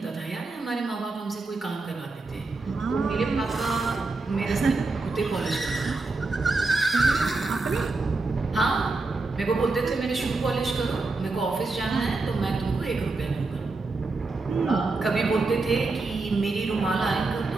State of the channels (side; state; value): left; quieter; 3.6 dB